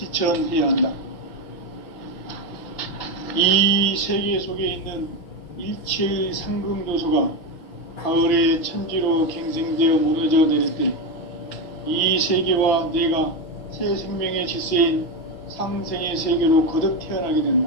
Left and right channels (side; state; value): right; late; 6.0 ms